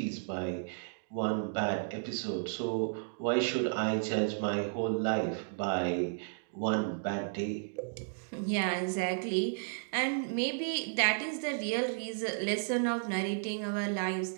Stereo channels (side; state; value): left; silent; digital silence